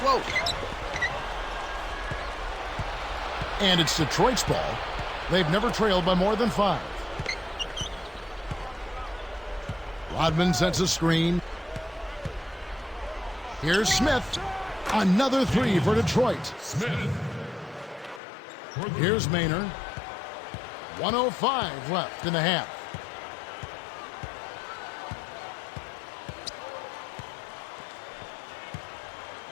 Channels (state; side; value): drops out; right; at 18.2 s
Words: And it's Detroit's ball. They've never trailed by more than 5. Rodman sets a screen. Here's Smith. Another 3 for Detroit. Here's Maynard. 1:05 left in the half.